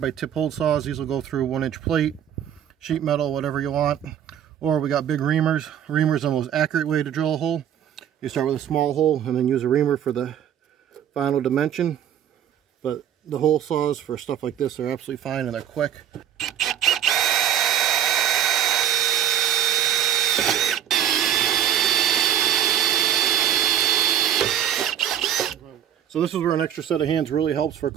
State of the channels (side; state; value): left; quieter; 10.0 dB